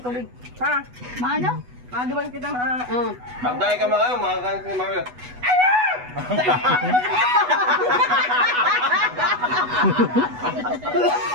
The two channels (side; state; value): left; late; 8.1 ms